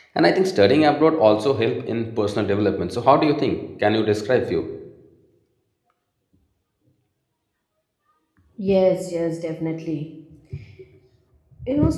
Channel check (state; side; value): identical; both; correlation 1.00